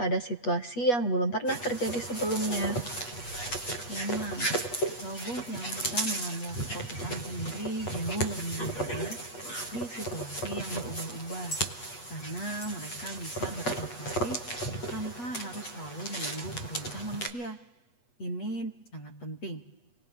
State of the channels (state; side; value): late; right; 8.3 ms